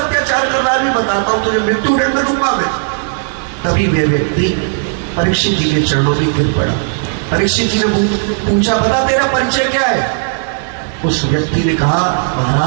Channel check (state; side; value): silent; left; digital silence